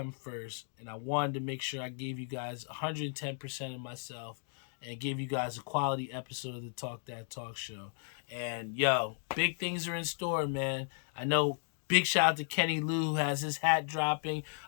first. And I wanted to make sure I gave you guys 110% of myself and gave you guys a quality episode of the Talk That Talk show. And, yo, big things are in store, man. I know. Big shout out to Kenny Lou, who has his hat dropping.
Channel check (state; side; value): silent; right; 55 dB below the other